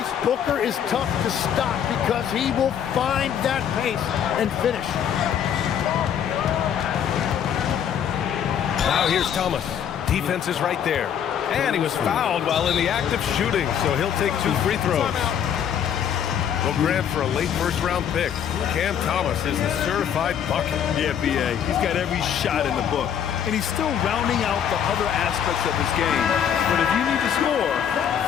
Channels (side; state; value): right; quieter; 8.8 dB